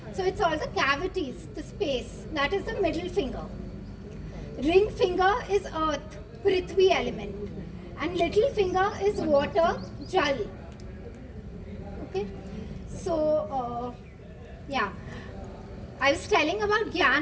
So it's all the cavities, the space. That is the middle finger. Ring finger is earth, Prithvi element. And little finger is water, Jal. Okay? So, yeah. I was telling about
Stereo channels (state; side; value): identical; both; correlation 1.00